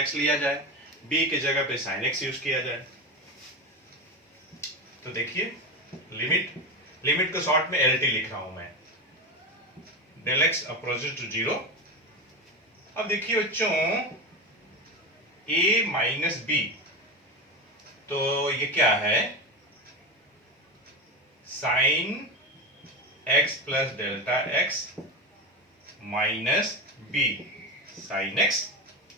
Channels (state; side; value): normal; both; correlation 0.20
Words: लिया जाए, बी के जगह पे साइन एक्स यूज किया जाए। तो देखिए लिमिट को शॉर्ट में एल टी लिख रहा हूं मैं, डेल एक्स अप्रोचेस टू 0 अब देखिए बच्चों, a माइनस बी, तो ये क्या है, sine x plus delta x minus b sine x,